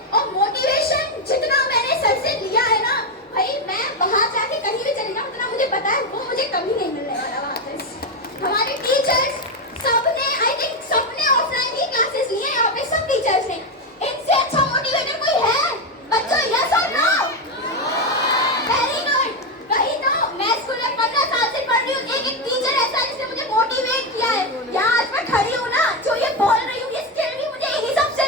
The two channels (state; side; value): normal; both; correlation 0.09